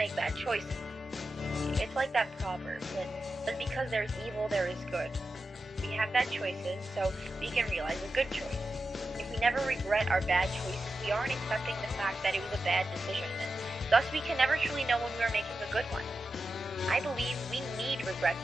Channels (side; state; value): both; normal; correlation 0.91